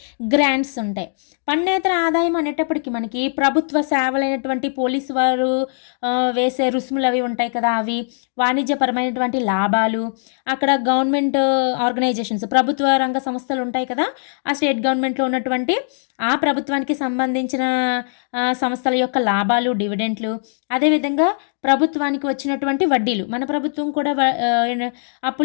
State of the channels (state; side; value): silent; right; digital silence